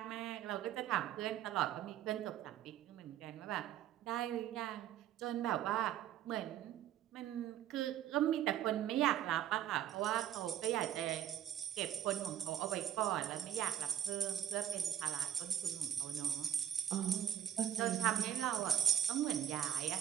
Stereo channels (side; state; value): left; quieter; 10.5 dB